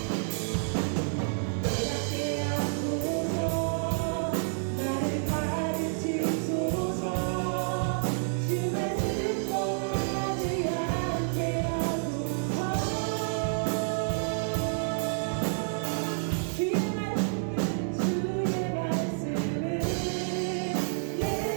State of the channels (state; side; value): silent; left; 58 dB below the other